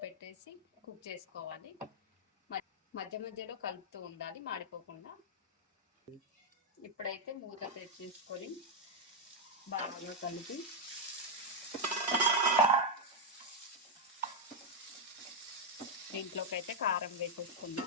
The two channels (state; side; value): normal; both; correlation -0.01